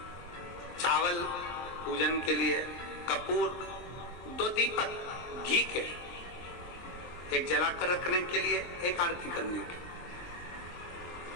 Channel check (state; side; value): late; right; 23 ms